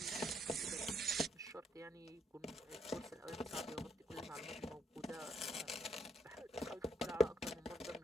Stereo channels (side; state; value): both; normal; correlation 0.75